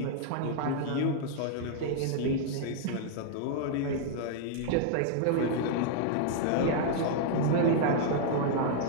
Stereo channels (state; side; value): different; both; correlation 0.00